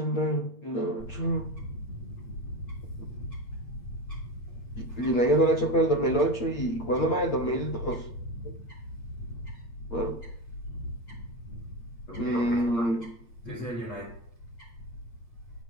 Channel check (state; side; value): late; right; 8.7 ms